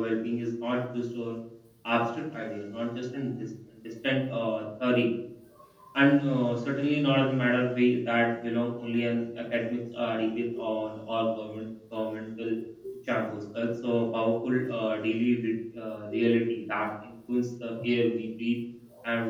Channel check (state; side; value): identical; both; correlation 1.00